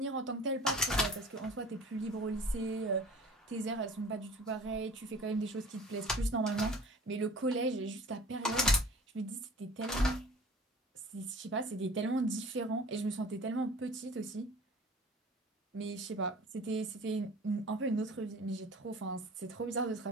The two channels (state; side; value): normal; both; correlation 0.44